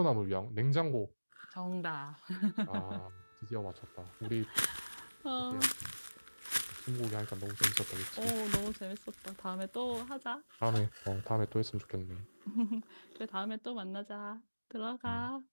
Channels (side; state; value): both; inverted; correlation -1.00